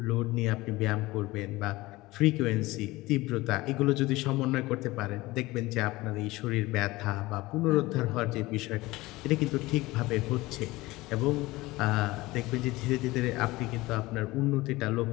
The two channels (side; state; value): right; quieter; 20.0 dB